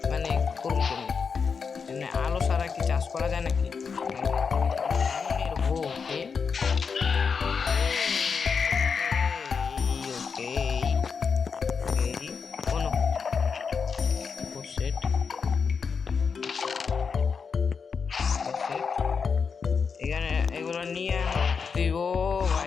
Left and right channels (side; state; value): right; quieter; 5.7 dB